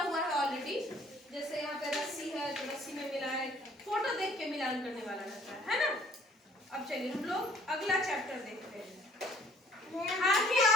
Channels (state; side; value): normal; both; correlation 0.59